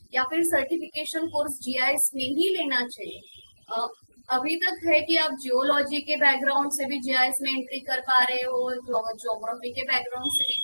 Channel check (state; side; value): inverted; both; correlation -1.00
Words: या फिर सर्टिफिकेशन कोर्स जीआईएस में ही लेना चाहिए। अ, अभी तक है कि आप जियोलॉजी के बैकग्राउंड से भी जीआईएस में एंट्री कर पा रहे हो, ज्योग्राफी के बैकग्राउंड से भी